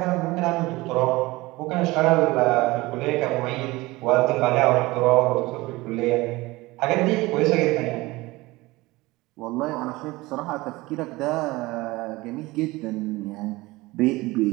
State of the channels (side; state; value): left; quieter; 20.8 dB